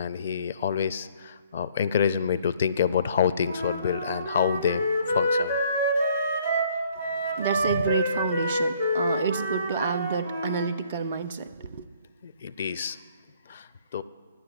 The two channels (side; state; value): both; inverted; correlation -0.61